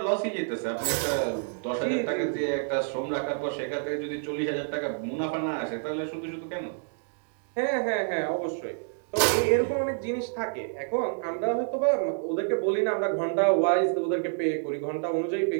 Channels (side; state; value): left; silent; digital silence